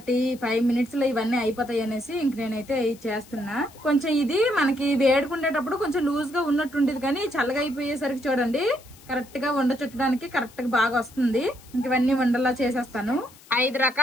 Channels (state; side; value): noise; left; hiss, 24 dB below the sound